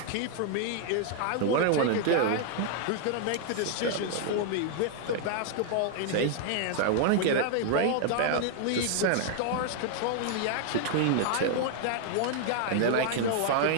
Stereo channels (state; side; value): different; both; correlation 0.00